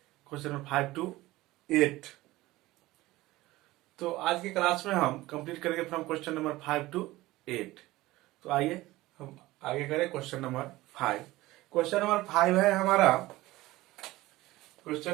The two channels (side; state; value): left; quieter; 18.3 dB